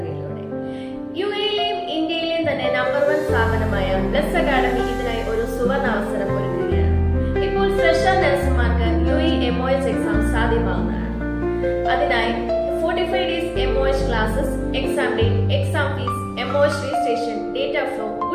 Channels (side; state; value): both; identical; correlation 1.00